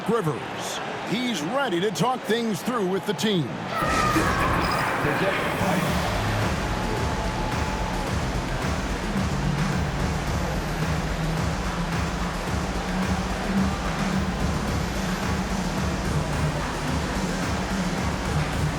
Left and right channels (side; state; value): both; identical; correlation 1.00